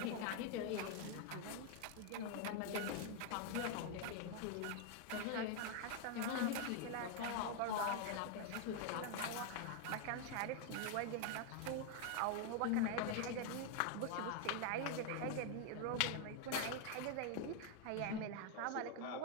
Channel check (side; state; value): both; different; correlation 0.00